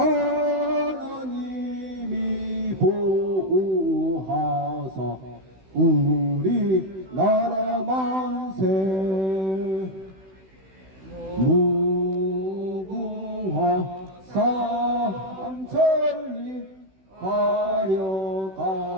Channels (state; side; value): late; left; 16 ms